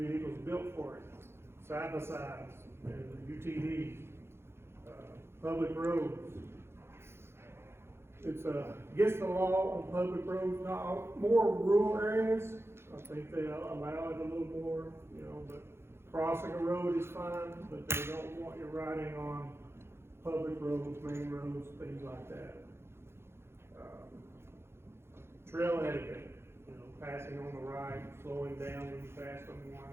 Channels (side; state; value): left; late; 0.12 ms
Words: built for it. Side-by-sides and UTVs, public roads. It's against the law on public roads, not more rural areas. I think they allow it a little more, you know, but crossing a road is fine, but they don't want you riding on public roads, main roads, things like that. Trail etiquette, you know, passing on the right, slowing down when you pass